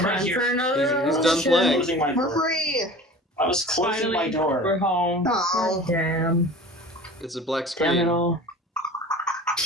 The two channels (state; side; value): normal; both; correlation 0.40